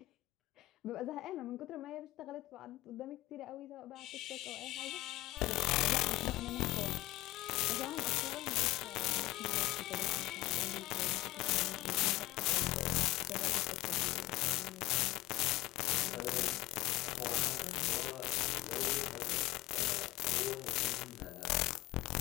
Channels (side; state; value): right; quieter; 18.2 dB